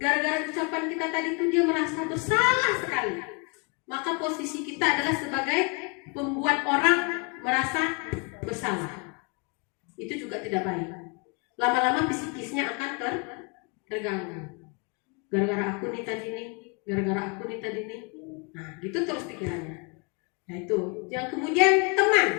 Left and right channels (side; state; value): right; quieter; 33.2 dB